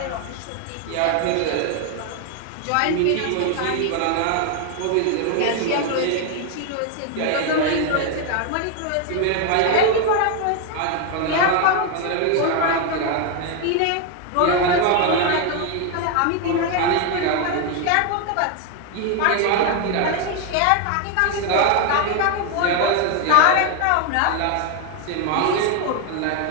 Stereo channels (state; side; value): different; both; correlation 0.01